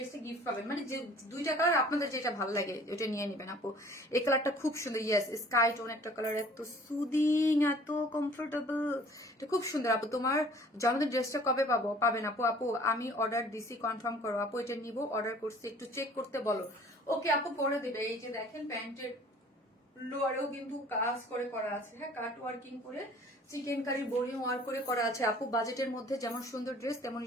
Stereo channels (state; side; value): normal; both; correlation 0.52